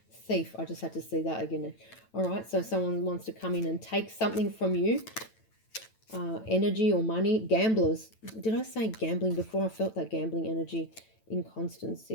Thief. I just had to see that again. All right. So someone wants to come in and take something from you. Energy or money. Gamblers. Did I say gambling before? I felt that gambling energy.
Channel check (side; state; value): right; late; 9.1 ms